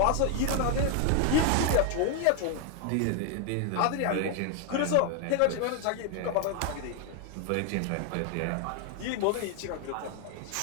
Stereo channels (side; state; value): both; different; correlation 0.00